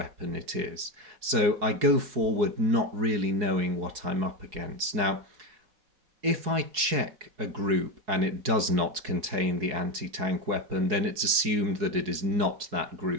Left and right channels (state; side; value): late; left; 4.7 ms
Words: it is. So I go forward not really knowing what I'm up against. Now, if I check a group and it does not contain the anti-tank weapon, then it's assumed that it is not that